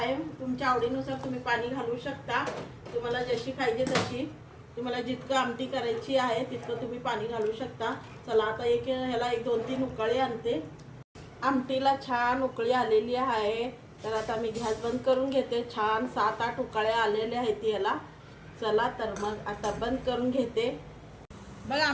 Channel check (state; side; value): identical; both; correlation 1.00